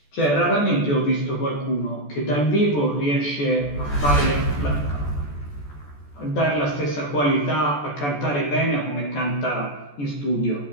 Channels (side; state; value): right; late; 14 ms